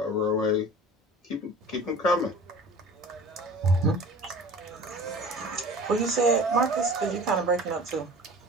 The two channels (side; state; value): both; normal; correlation 0.41